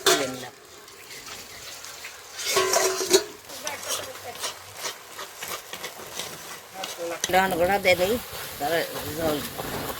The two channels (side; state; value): both; identical; correlation 1.00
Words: নিলাম। ডান গোড়া দিয়ে দিই, তারপরে জল